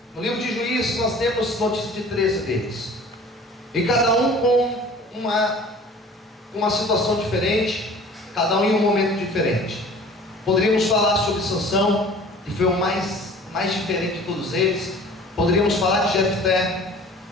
No livro de Juízes nós temos notícia de 13 deles. E cada um com uma situação diferente, cada um em um momento diferente. Poderíamos falar sobre Sansão, que foi o mais diferente de todos eles. Poderíamos falar de Jefté,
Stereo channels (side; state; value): both; normal; correlation 0.46